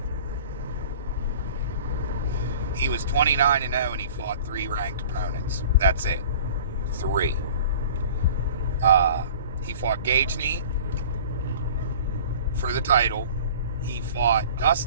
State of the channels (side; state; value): both; inverted; correlation -0.44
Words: He was 29-0 and he fought 3 ranked opponents. That's it. 3. He fought Gagne for the title. He fought